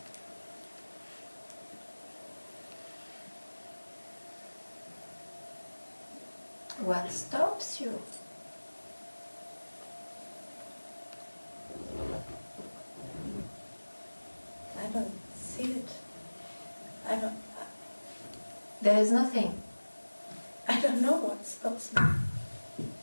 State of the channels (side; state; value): both; inverted; correlation -1.00